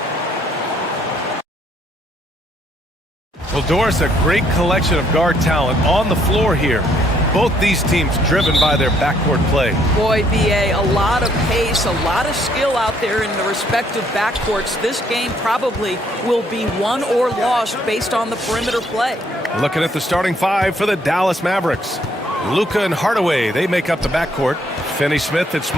Well, Doris, a great collection of guard talent on the floor here. Both these teams driven by their backcourt play. Boy, B.A., a lot of pace, a lot of skill out there in the respective backcourts. This game probably will be won or lost based on the perimeter play. Looking at the starting five for the Dallas Mavericks. Luka and Hardaway, they make up the backcourt. Finney-Smith at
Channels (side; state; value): both; normal; correlation 0.67